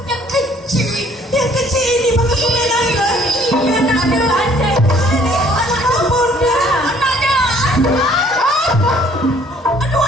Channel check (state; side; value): normal; both; correlation 0.59